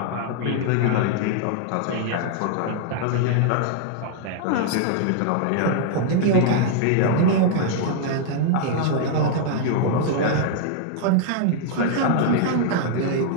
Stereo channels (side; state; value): both; different; correlation -0.01